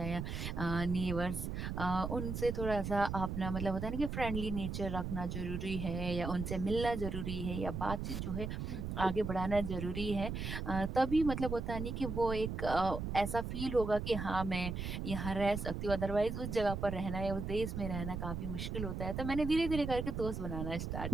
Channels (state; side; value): noise; right; rumble, 4 dB below the sound